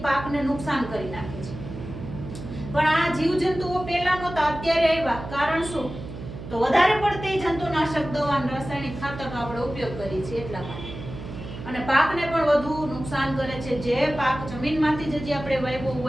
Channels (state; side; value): noise; right; hum, 10 dB below the sound